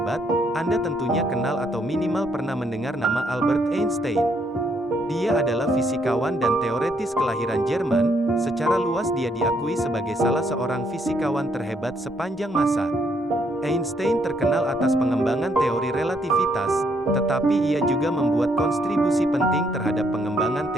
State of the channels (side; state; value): both; normal; correlation 0.72